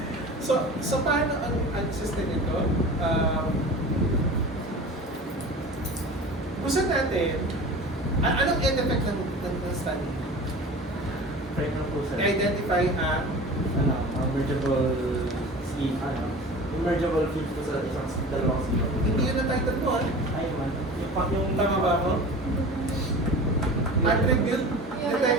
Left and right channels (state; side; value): normal; both; correlation 0.37